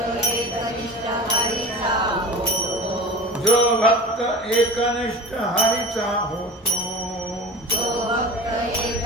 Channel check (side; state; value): both; normal; correlation 0.35